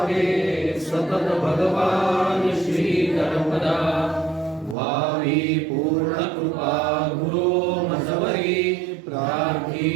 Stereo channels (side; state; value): left; drops out; at 4.8 s